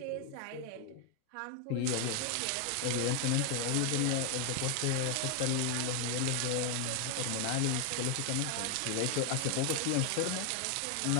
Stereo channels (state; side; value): different; both; correlation 0.01